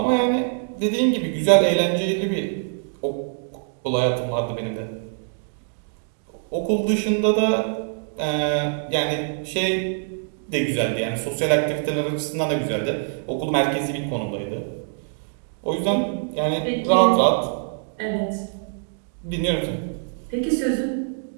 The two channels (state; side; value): silent; left; digital silence